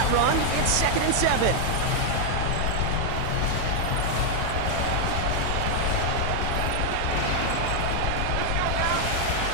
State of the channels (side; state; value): both; different; correlation 0.00